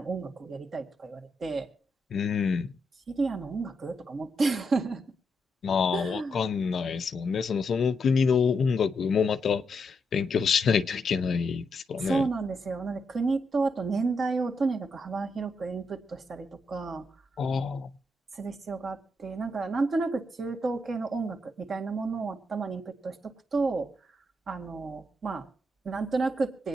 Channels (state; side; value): normal; both; correlation 0.81